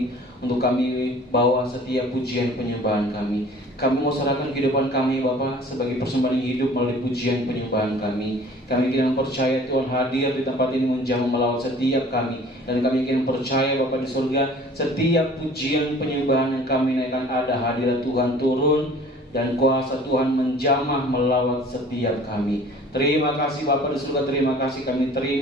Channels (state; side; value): normal; both; correlation 0.49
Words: untuk kami bawa setiap pujian penyembahan kami. Kami mau serahkan kehidupan kami Bapa sebagai persembahan hidup melalui pujian penyembahan kami. Kami ingin percaya Tuhan hadir di tempat ini menjamah melawat setiap kami. Dan kami ingin percaya Bapa di surga, setiap pujian penyembahan yang kami naikkan ada hadirat Tuhan turun dan kuasa Tuhan menjamah melawat setiap kami. Terima kasih Bapa di surga, terima kasih kami